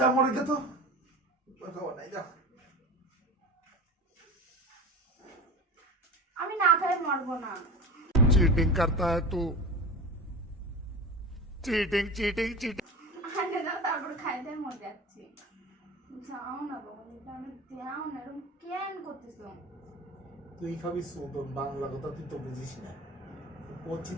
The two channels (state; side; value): normal; both; correlation 0.31